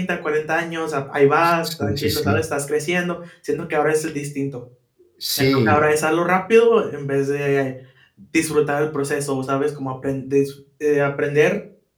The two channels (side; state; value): both; identical; correlation 1.00